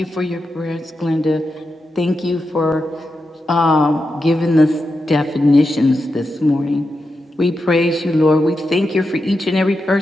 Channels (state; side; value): normal; both; correlation 0.88